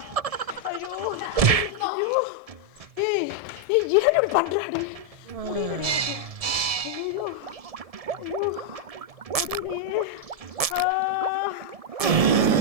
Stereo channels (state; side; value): late; left; 1.7 ms